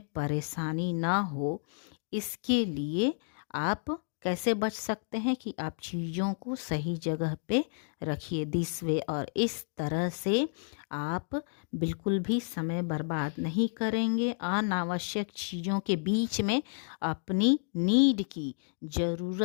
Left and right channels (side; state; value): right; silent; digital silence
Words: परेशानी ना हो, इसके लिए आप कैसे बच सकते हैं कि आप चीज़ों को सही जगह पे रखिए। दिस वे, और इस तरह से आप बिल्कुल भी समय बर्बाद नहीं करेंगे। अनावश्यक चीज़ों के बीच में अपनी नीड की,